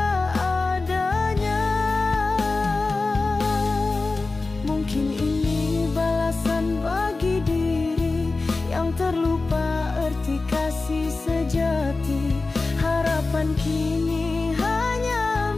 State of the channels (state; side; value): quieter; right; 3.6 dB